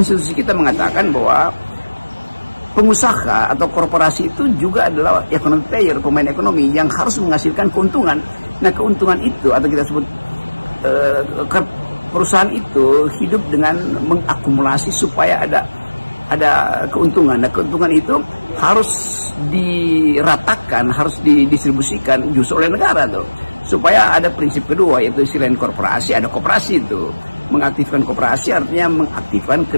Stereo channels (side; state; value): both; inverted; correlation -1.00